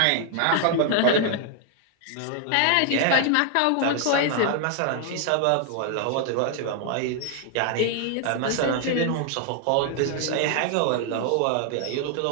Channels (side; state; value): both; different; correlation 0.00